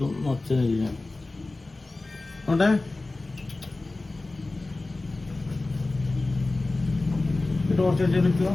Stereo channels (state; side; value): quieter; right; 3.1 dB